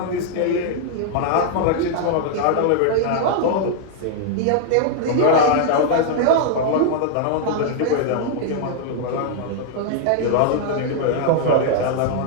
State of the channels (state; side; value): different; both; correlation 0.00